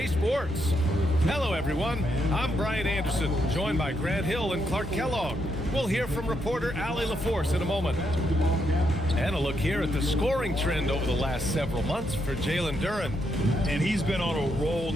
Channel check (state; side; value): normal; both; correlation 0.79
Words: Sports. Hello, everyone. I'm Brian Anderson, joined by Grant Hill and Clark Kellogg. We'll hear from reporter Allie LaForce in a moment. And a look here at the scoring trend over the last several months for Jalen Duren. And he's been on a roll